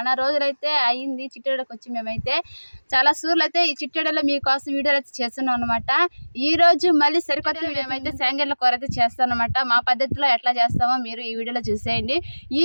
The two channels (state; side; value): inverted; both; correlation -1.00